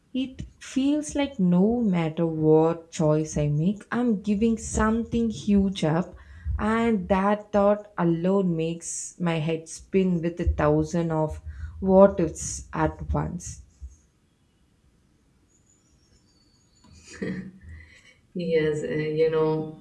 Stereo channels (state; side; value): identical; both; correlation 1.00